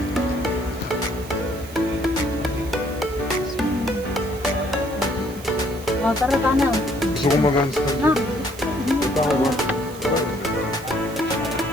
Oh, tara tana. Gusto ko mag-handstand. Na. Tao ba?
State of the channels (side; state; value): right; noise; hiss, 18 dB below the sound